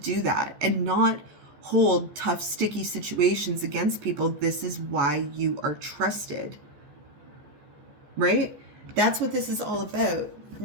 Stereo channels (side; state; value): left; late; 14 ms